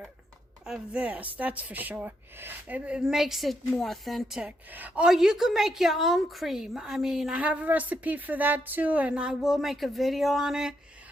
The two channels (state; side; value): normal; both; correlation 0.79